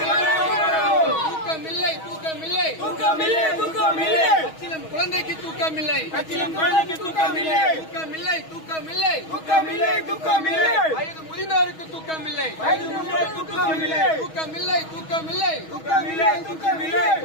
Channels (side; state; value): right; late; 6.3 ms